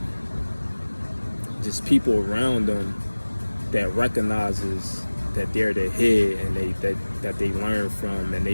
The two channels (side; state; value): both; inverted; correlation -1.00